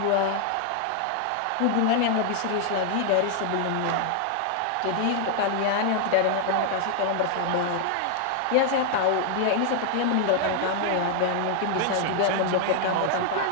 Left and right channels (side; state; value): both; different; correlation 0.00